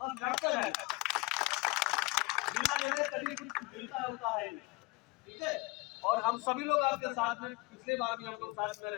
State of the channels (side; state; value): right; quieter; 24.9 dB